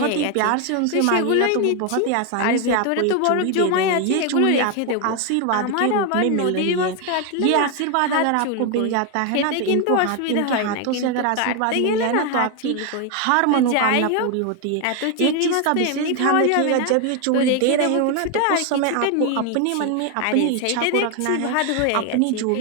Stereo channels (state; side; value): different; both; correlation 0.01